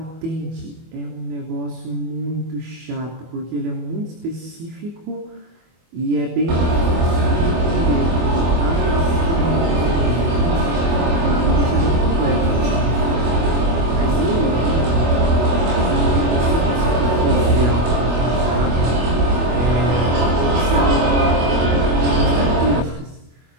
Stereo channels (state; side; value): late; left; 24 ms